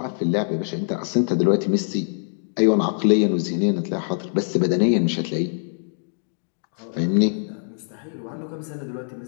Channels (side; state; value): right; silent; digital silence